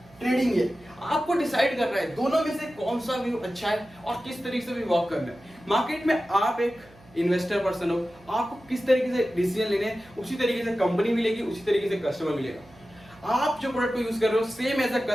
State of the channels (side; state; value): right; noise; hum, 26 dB below the sound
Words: ट्रेडिंग है, आपको डिसाइड करना है दोनों में से कौन सा व्यू अच्छा है और किस तरीके से भी वर्क करना है। मार्केट में आप एक इन्वेस्टर पर्सन हो, आपको किस तरीके से डिसीजन लेने हैं, उसी तरीके से कंपनी मिलेगी, उसी तरीके से कस्टमर मिलेगा। आप जो प्रोडक्ट को यूज कर रहे हो, सेम एज अ